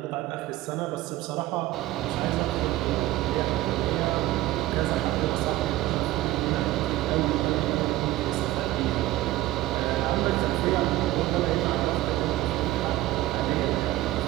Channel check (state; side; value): quieter; left; 16.0 dB